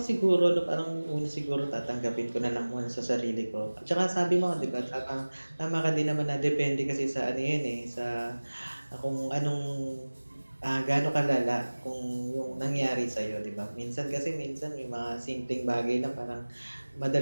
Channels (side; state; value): both; inverted; correlation -1.00